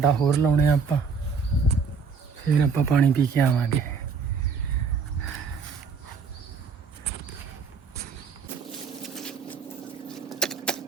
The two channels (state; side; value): quieter; left; 5.4 dB